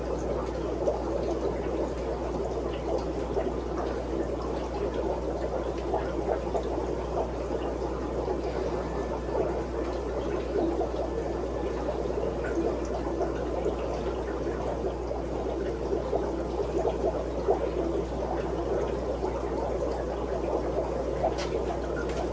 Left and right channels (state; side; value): identical; both; correlation 1.00